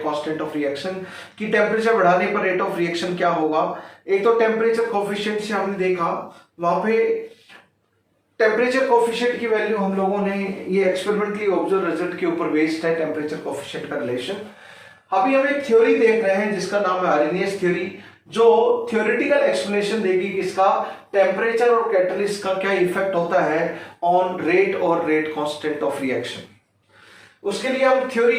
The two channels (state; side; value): identical; both; correlation 1.00